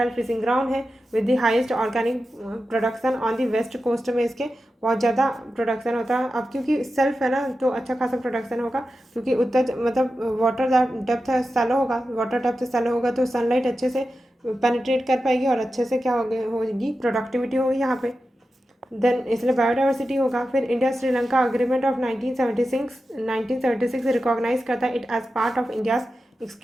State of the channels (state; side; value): normal; both; correlation 0.91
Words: फिशिंग ग्राउंड है, with the highest organic production on the west coast में इसके बहुत ज़्यादा प्रोडक्शन होता है। अब क्योंकि सेल्फ है ना तो अच्छा खासा प्रोडक्शन होगा, क्योंकि उत्तर मतलब वाटर डेप्थ सैलो होगा, वाटर डेप्थ सैलो होगा तो सनलाइट अच्छे से पेनिट्रेट कर पाएगी और अच्छे से क्या होगी प्रोडक्टिविटी होगी यहाँ पे। देन इसलिए बायोडाइवर्सिटी होगा। फिर India Sri Lanka agreement of 1976 recognise करता है it as part of India's